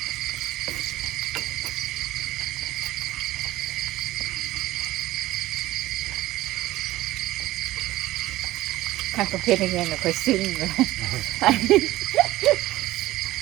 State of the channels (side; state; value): left; quieter; 16.6 dB